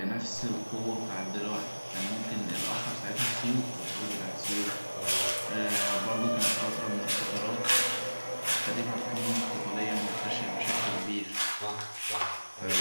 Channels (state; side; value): inverted; both; correlation -1.00